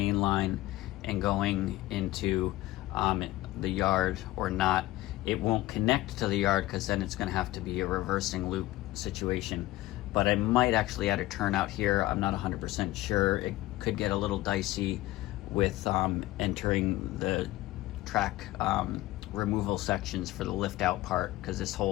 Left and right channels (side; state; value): right; quieter; 17.3 dB